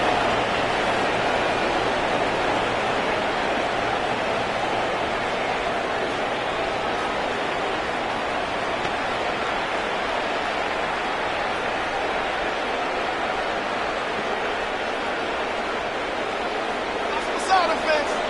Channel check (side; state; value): both; identical; correlation 1.00